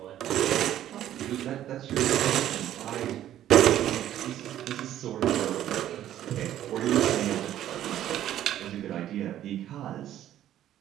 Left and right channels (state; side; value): quieter; left; 12.0 dB